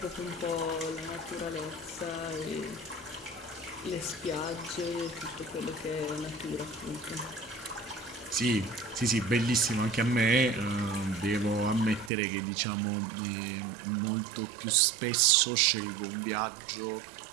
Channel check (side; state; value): left; drops out; at 12.1 s